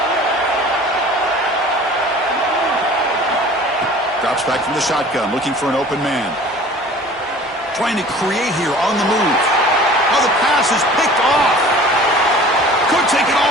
Drops back from the shotgun, looking for an open man. Trying to create here on the move. Oh, the pass is picked off. Could take it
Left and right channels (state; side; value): normal; both; correlation 0.45